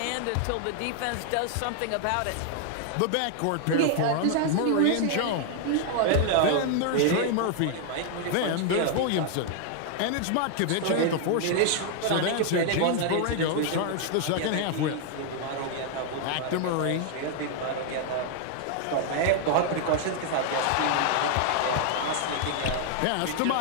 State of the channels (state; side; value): different; both; correlation 0.00